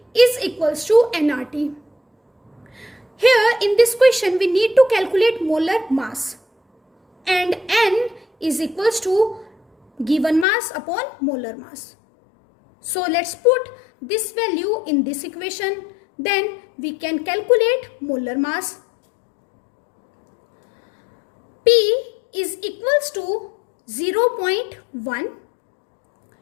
is equals to nRT. Here in this question, we need to calculate molar mass, and N is equals to given mass upon molar mass. So let's put this value in this equation, then we can calculate molar mass. P is equals to 0.1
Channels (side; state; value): right; drops out; at 10.5 s